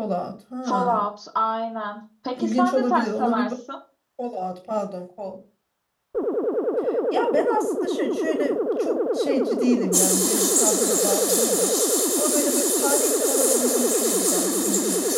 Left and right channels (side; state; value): both; identical; correlation 1.00